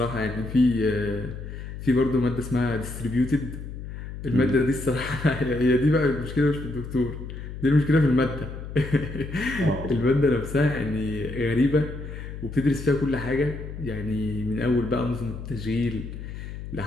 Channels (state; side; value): noise; left; hum, 9 dB below the sound